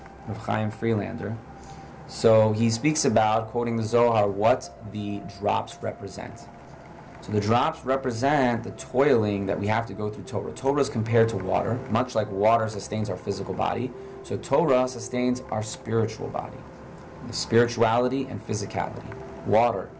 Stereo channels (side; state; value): both; identical; correlation 1.00